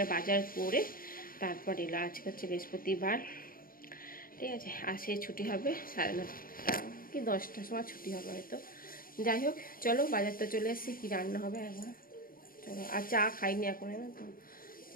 বাজার করে তারপর এলো। আজকে হচ্ছে বৃহস্পতিবার, ঠিক আছে। আসে ছুটি হবে 9:30 কি 10টার সময় ছুটি হবে হয়তো। যাই হোক, চলো বাজারটা চলে এসেছি, কী রান্না হবে একবার চলো। আর চা খাইনি এখন, না তো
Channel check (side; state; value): right; late; 0.42 ms